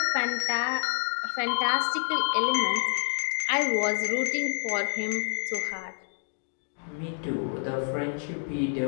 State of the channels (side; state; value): right; silent; 59 dB below the other